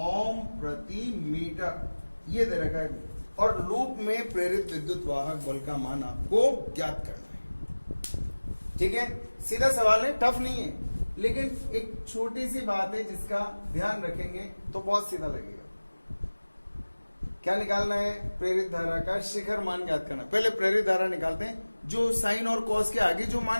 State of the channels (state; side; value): inverted; both; correlation -1.00